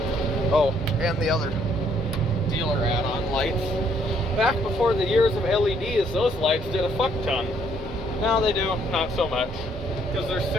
Oh, and the other dealer add-on lights. Back before the years of LEDs, those lights did a fuck ton. Now they do, not so much. Because there's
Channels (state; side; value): normal; both; correlation 0.67